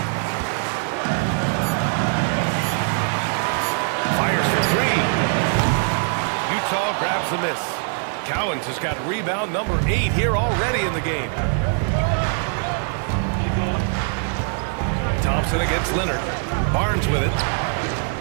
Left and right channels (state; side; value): silent; left; 57 dB below the other